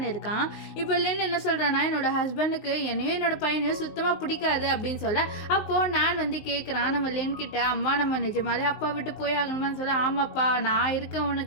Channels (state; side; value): late; right; 19 ms